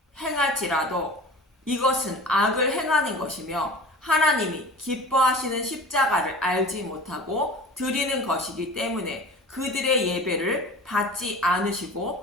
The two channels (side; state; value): both; normal; correlation 0.38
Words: 행할지라도 이것은 악을 행하는 것이며 하나님이 기뻐하시는 십자가를 알지 못하고 드리는 것이기 때문에 그들의 예배를 받지